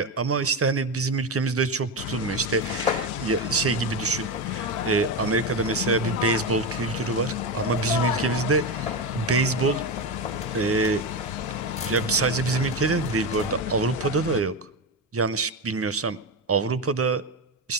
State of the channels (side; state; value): both; normal; correlation 0.15